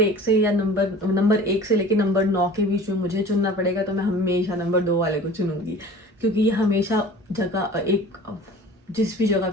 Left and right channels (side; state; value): both; normal; correlation 0.42